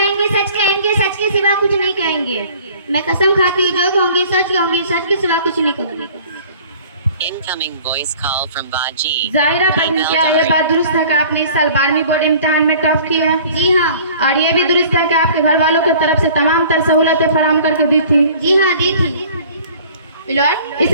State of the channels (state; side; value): inverted; both; correlation -0.50